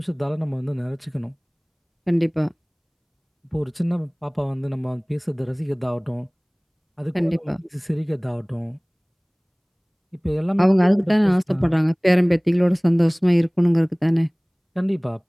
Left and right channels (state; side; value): identical; both; correlation 1.00